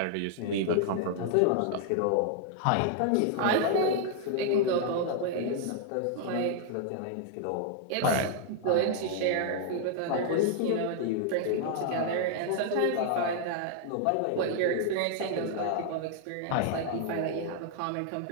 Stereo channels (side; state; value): both; different; correlation -0.01